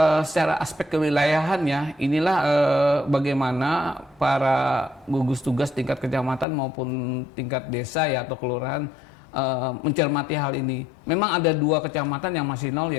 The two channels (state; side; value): drops out; right; at 6.5 s